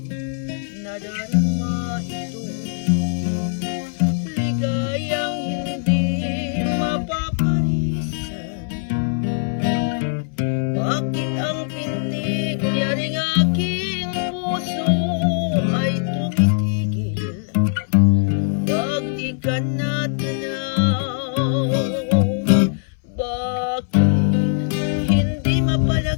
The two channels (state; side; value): silent; right; 65 dB below the other